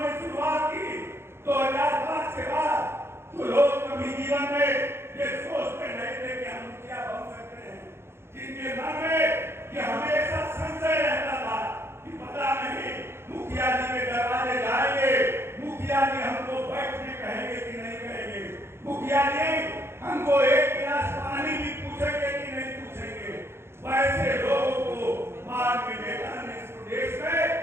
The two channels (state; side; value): late; left; 0.12 ms